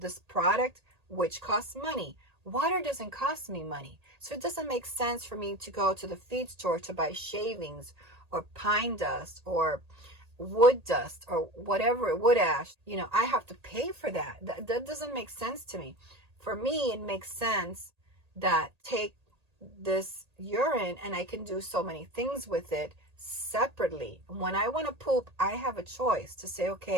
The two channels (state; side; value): late; left; 1.8 ms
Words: product, which costs money, water doesn't cost me money. So it doesn't make sense for me to go to the feed store to buy shavings or pine dust or wood dust or whatever, wood ash. I have to pay for that. That doesn't make sense to me. For me, it makes sense that take this urine and I can do so many things with it separately. When I want to poop, I have a choice to say,